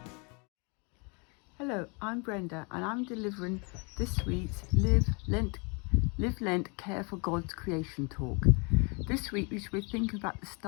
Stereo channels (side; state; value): right; quieter; 32.7 dB